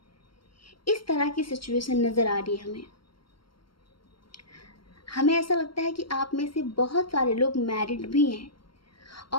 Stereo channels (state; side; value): late; right; 0.73 ms